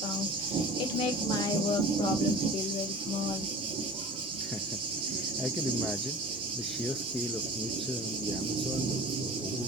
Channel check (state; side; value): normal; both; correlation 0.39